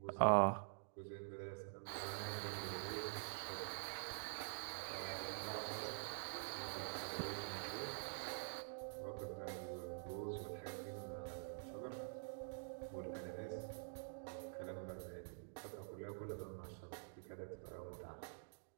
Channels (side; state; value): left; silent; digital silence